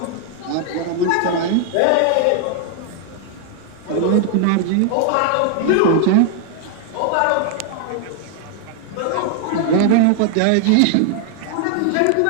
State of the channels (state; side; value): different; both; correlation 0.00